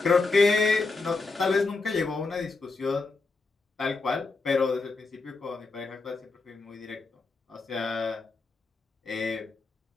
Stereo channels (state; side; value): quieter; right; 3.8 dB